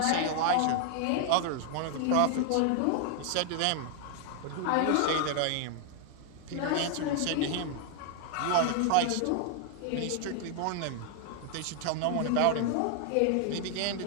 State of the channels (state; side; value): different; both; correlation 0.00